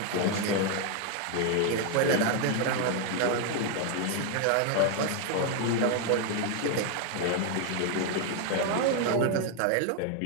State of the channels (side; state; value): both; different; correlation 0.01